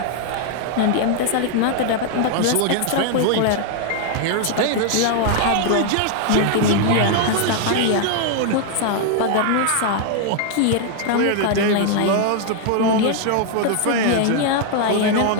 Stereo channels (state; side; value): different; both; correlation 0.00